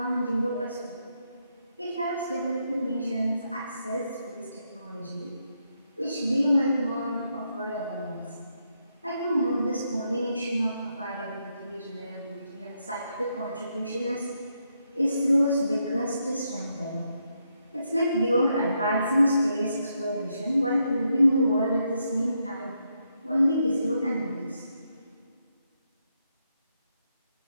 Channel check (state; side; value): inverted; both; correlation -0.80